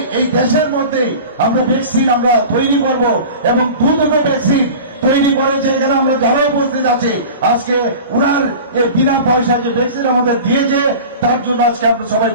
এই দেশের মধ্যে আমরা ভ্যাকসিন আমরা তৈরি করব এবং দুটো ভ্যাকসিন তৈরি করেছে। এখানে আমরা যারা উপস্থিত আছে আজকে উনার এই বিনা পয়সা যে ভ্যাকসিন আমাদের দিয়েছে তার জন্য আজকে আমরা সবাই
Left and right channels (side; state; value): both; inverted; correlation -0.37